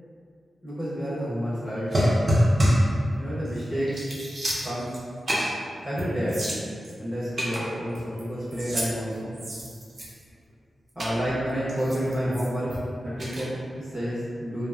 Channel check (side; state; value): both; normal; correlation 0.93